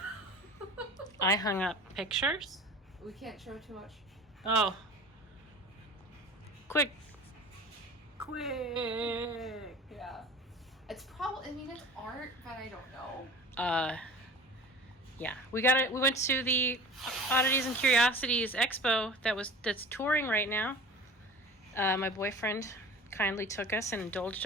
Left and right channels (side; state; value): both; normal; correlation 0.39